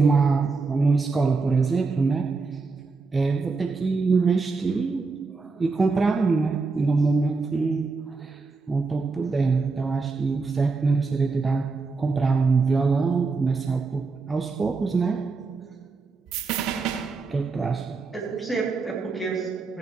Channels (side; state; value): left; quieter; 4.2 dB